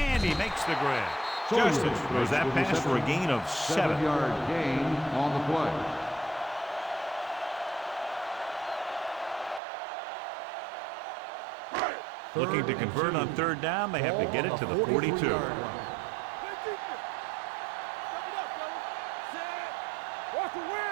he makes the grab. Justin throws that pass for a gain of 7. 7-yard gain on the play. Looking to convert on third down, they have to get it to the 42.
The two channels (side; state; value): left; drops out; at 9.6 s